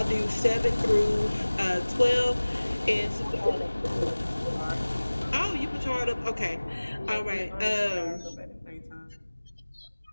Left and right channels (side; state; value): both; inverted; correlation -1.00